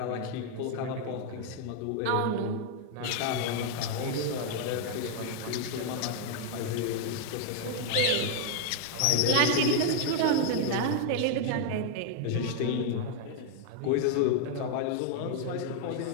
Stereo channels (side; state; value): both; different; correlation 0.00